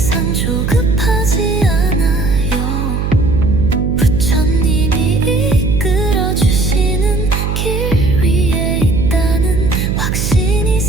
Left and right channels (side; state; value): right; noise; hum, 1 dB below the sound